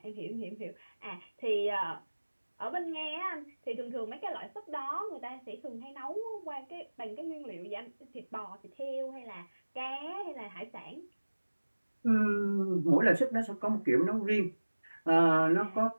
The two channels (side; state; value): both; inverted; correlation -1.00